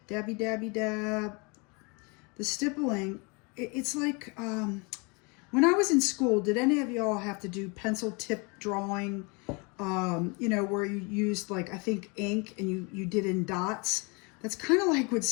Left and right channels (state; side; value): quieter; right; 30.4 dB